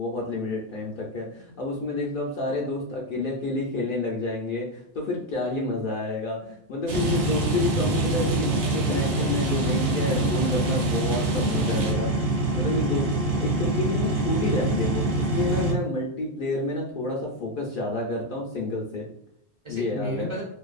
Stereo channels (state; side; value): normal; both; correlation 0.05